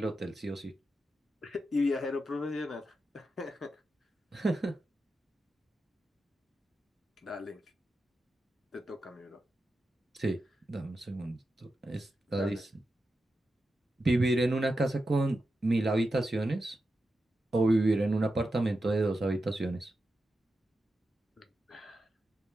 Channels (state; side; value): normal; both; correlation 0.89